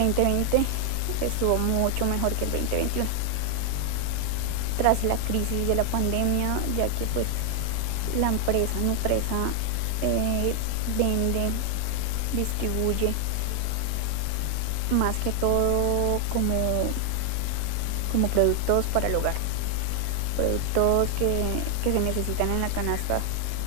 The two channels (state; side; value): different; both; correlation 0.00